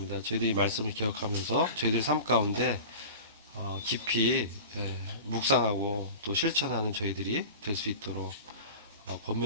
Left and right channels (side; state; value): both; inverted; correlation -0.35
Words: 저희들이 이 말씀을 기억하면서 저희들 삶 가운데 깊이 묵상하고 또 실천하는 저희들이 될 수 있도록